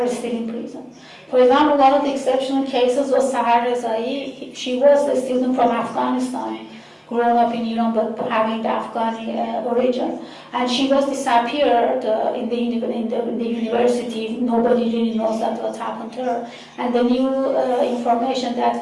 still in prison. For example, one of the exceptional cases was Sahar Rezai. She was a student from Afghanistan. grown up in Iran but having the Afghani origin. And she was disappeared in the university. Nobody really knows that what happened to her. And the new information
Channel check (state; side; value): identical; both; correlation 1.00